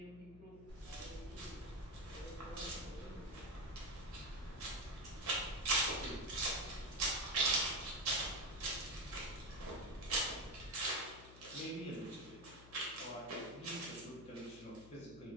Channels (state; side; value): noise; left; hum, 17 dB below the sound